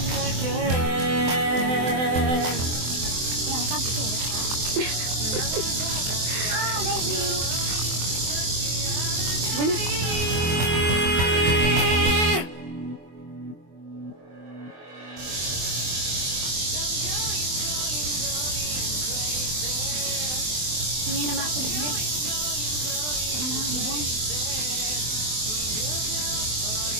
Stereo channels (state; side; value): late; left; 24 ms